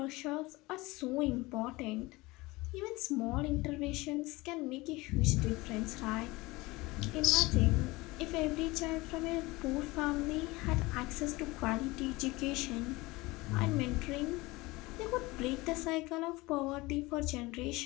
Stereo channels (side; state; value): right; quieter; 21.8 dB